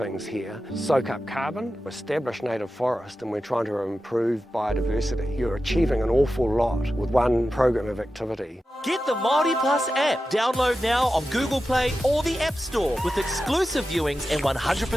here. Soak up carbon, establish native forest, and we're trying to improve biodiversity. You're achieving an awful lot with one program of activity. Get the Māori Plus app. Download now on Google Play or the App Store with exclusive viewings and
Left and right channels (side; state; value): both; normal; correlation 0.92